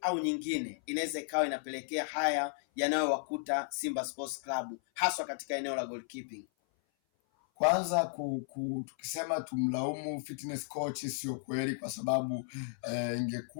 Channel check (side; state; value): right; silent; 55 dB below the other